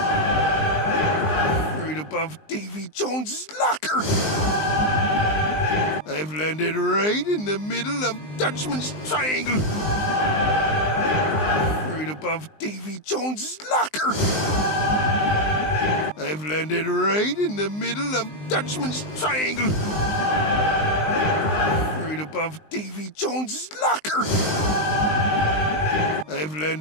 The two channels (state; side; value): late; right; 19 ms